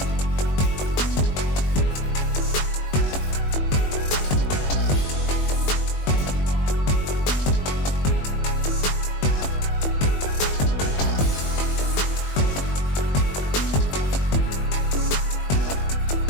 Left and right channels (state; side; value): late; right; 21 ms